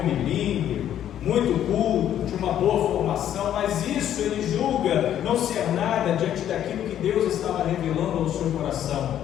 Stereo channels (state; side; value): quieter; right; 10.8 dB